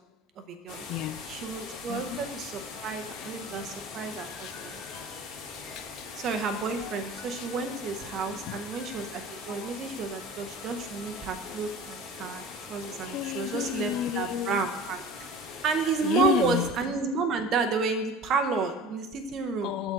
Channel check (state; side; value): normal; both; correlation 0.40